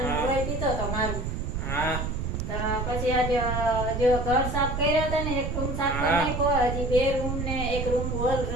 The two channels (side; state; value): right; noise; rumble, 3 dB below the sound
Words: રોય પીતો તો મારું. હા. તો પછી આજે જો ઘર સાફ કર્યા હતા ને, એક રૂમ સાફ કરી નાખ્યો, હજી 2 રૂમ ને એક રૂમ હોલ